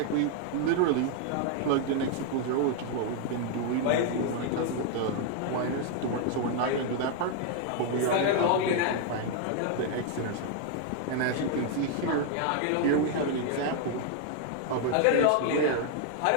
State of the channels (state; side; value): different; both; correlation 0.00